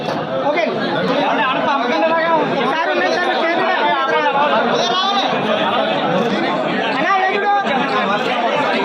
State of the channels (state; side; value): identical; both; correlation 1.00